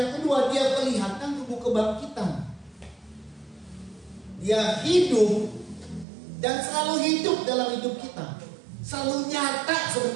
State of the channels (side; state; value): left; drops out; at 6.1 s